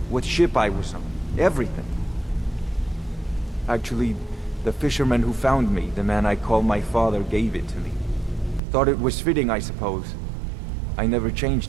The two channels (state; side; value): drops out; left; at 8.6 s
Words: what ship I was on, everything. Actually, the fisherman who found me, the man I call my father, gave it to me. Thought it was fitting, I suppose. I never